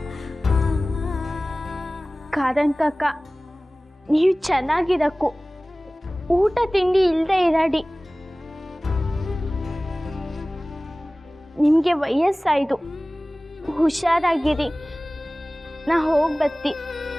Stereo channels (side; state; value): both; normal; correlation 0.98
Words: ಖಾದನ್ ಕಾಕ, ನೀವು ಚೆನ್ನಾಗಿರಕ್ಕು, ಊಟ ತಿಂಡಿ ಇಲ್ಲದೆ ಇರಾಡಿ. ನಿಮಗೆ ವಯಸ್ಸಾಯ್ತು, ಹುಷಾರಾಗಿರಿ. ನಾ ಹೋಗಿ ಬತ್ತಿ.